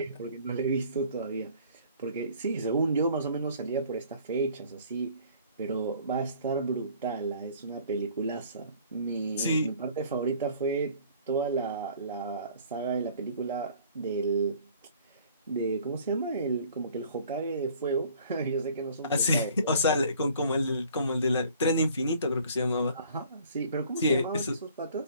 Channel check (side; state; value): both; inverted; correlation -0.53